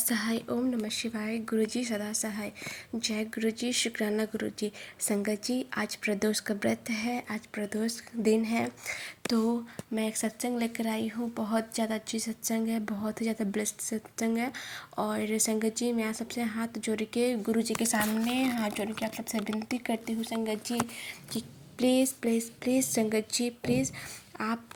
ओम नमः शिवाय। गुरु जी सदा सहाय। जय गुरु जी। शुक्राना गुरु जी। संगत जी, आज प्रदोष का व्रत है, आज प्रदोष दिन है, तो मैं एक सत्संग लेकर आई हूँ। बहुत ज़्यादा अच्छी सत्संग है, बहुत ही ज़्यादा ब्लेस्ड सत्संग है। और संगत जी, मैं आप सबसे हाथ जोड़ के गुरु जी के सामने हाथ जोड़ के आप सबसे विनती करती हूँ संगत जी कि प्लीज़ प्लीज़ प्लीज़ संगत जी, प्लीज़ आप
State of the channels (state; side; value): identical; both; correlation 1.00